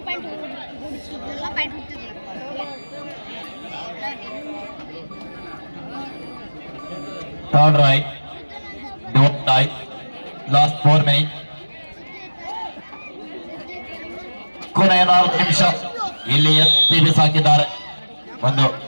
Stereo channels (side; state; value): both; inverted; correlation -1.00